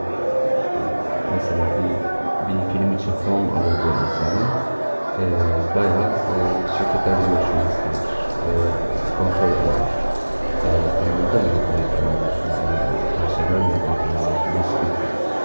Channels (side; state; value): both; inverted; correlation -1.00